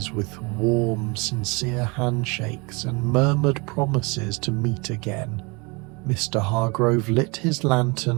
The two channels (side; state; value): left; quieter; 28.7 dB